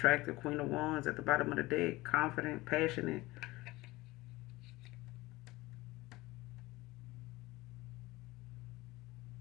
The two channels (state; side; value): quieter; right; 20.2 dB